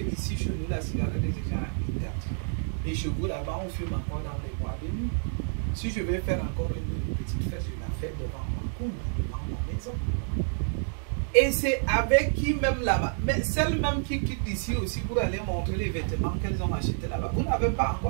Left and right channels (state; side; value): silent; left; digital silence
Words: ici, chez nous, la cigarette est déjà interdite. Les chevaux là-bas, on fume encore dans les bois de nuit. Si je vais faire encore une petite fête, je la fais devant ma cour, devant ma maison. Et c'est avec qui même là-bas, mais celles même qui quittent ici aussi pour aller montrer les vêtements qu'elles ont achetés là-bas. Vous n'avez pas